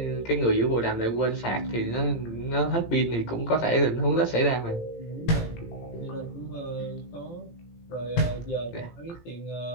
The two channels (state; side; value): late; right; 18 ms